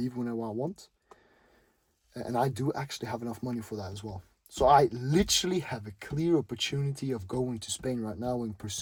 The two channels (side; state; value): both; identical; correlation 1.00